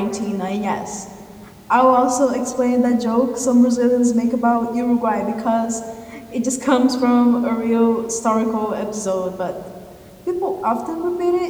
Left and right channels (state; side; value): identical; both; correlation 1.00